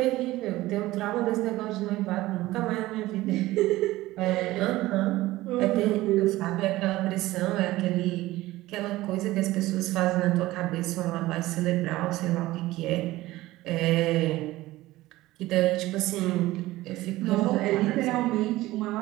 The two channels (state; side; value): quieter; left; 17.5 dB